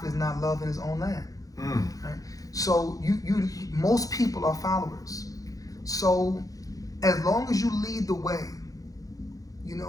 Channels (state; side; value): late; right; 0.17 ms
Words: is not loved in his own land. Right? So most people are followers. So as long as you lead the way,